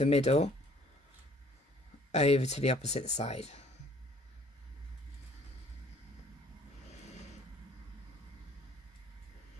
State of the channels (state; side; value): normal; both; correlation 0.57